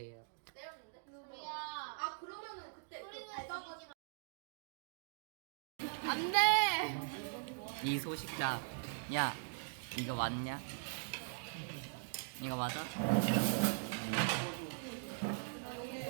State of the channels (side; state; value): left; silent; digital silence